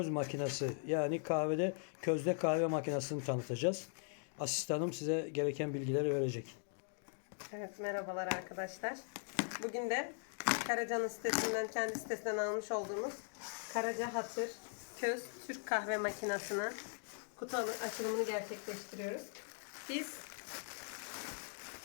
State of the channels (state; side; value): silent; right; 51 dB below the other